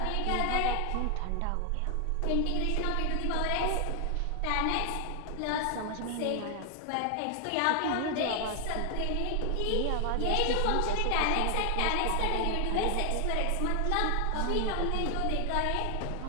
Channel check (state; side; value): different; both; correlation 0.00